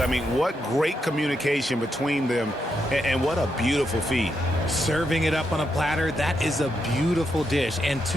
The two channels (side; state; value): both; normal; correlation 0.82